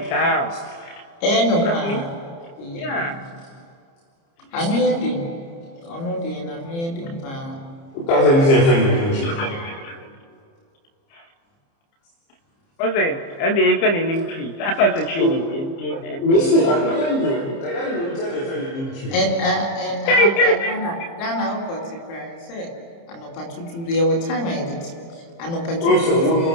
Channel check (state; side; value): late; right; 30 ms